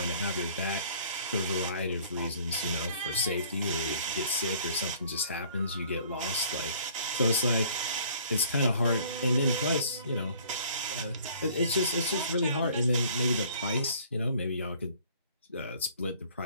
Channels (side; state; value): both; inverted; correlation -0.56